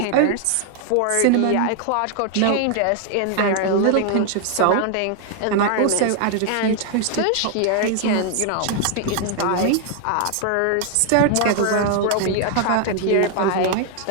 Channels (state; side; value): different; both; correlation 0.00